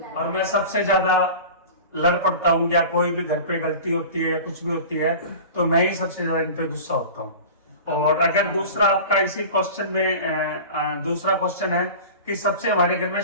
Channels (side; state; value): both; inverted; correlation -0.36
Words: और मैं सबसे ज्यादा लड़ पड़ता हूँ, या कोई भी घर पे गलती होती है या कुछ भी होती है तो मैं ही सबसे ज्यादा इन पे गुस्सा होता हूँ। और अगर दूसरा आपका इसी क्वेश्चन में दूसरा क्वेश्चन है कि सबसे हमारे घर में